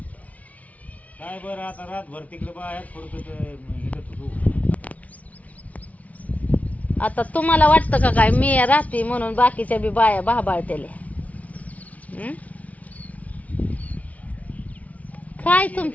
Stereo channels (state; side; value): late; right; 0.070 ms